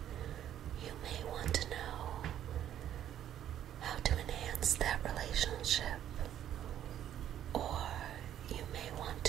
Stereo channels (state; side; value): quieter; left; 10.9 dB